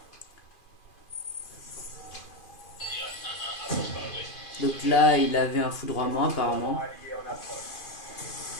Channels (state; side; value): late; right; 2.5 ms